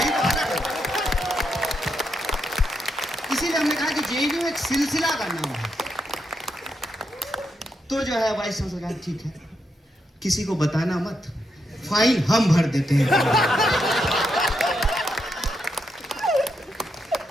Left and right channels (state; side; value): normal; both; correlation 0.81